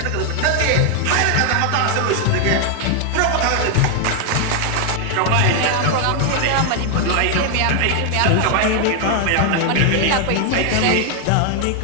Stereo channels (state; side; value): different; both; correlation 0.00